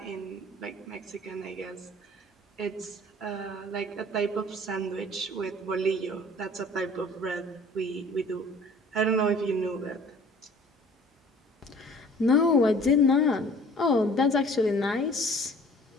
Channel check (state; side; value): normal; both; correlation 0.50